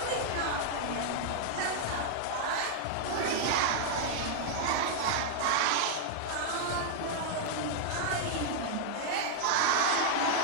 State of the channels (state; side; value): different; both; correlation -0.01